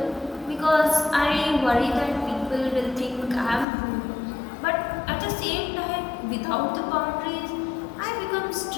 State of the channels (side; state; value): right; drops out; at 3.7 s